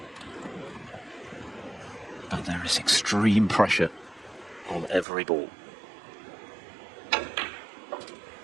But there is extreme pressure on every ball.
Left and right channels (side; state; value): left; drops out; at 5.1 s